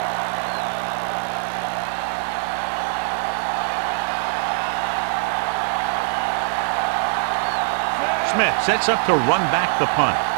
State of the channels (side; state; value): left; silent; digital silence